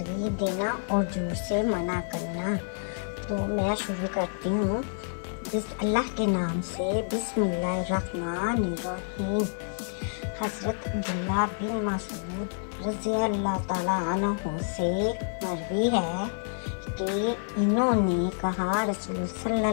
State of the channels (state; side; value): silent; right; 59 dB below the other